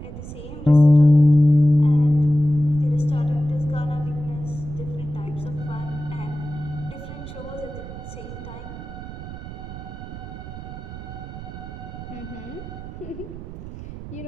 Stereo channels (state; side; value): noise; right; rumble, 11 dB below the sound